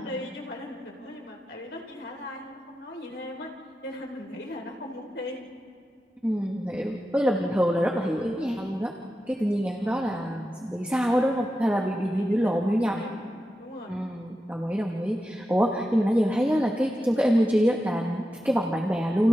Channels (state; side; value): normal; both; correlation 0.90